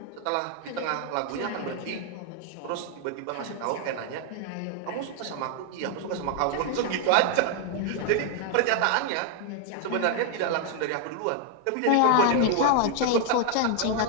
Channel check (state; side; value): different; both; correlation 0.00